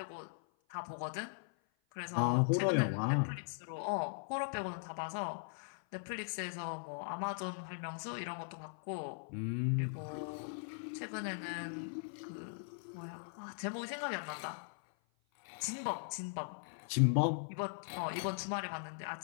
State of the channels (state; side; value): silent; right; 52 dB below the other